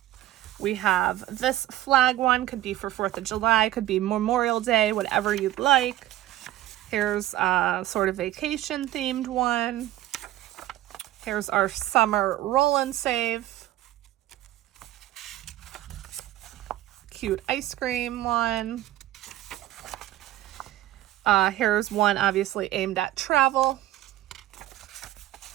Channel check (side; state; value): left; quieter; 14.7 dB